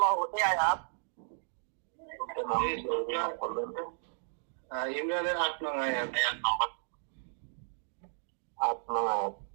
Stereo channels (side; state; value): left; silent; digital silence